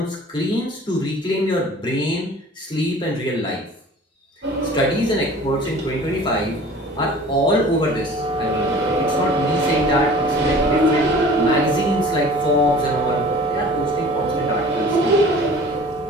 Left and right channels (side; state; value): both; normal; correlation 0.45